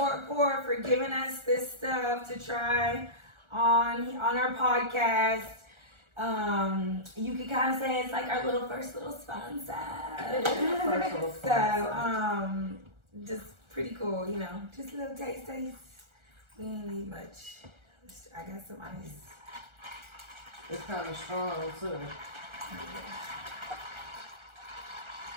for giving us this stuff to try on our podcast. You could kind of say it's like our first little sponsor. So, just pretty cool, just a little taste. We ain't need much. I got some ice. It's kind of strong too.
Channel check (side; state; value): left; late; 1.4 ms